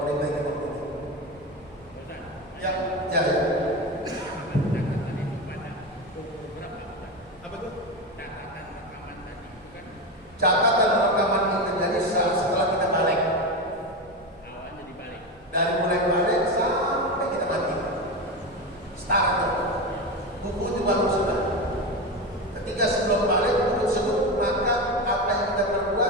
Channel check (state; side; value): normal; both; correlation 0.19